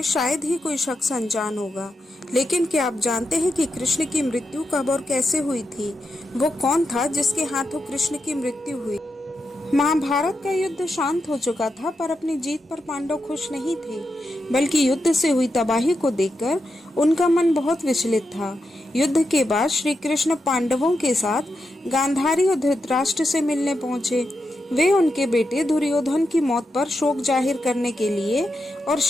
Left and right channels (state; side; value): normal; both; correlation 0.86